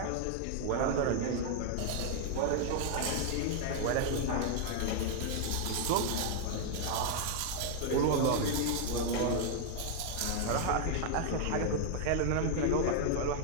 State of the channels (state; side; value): different; both; correlation 0.00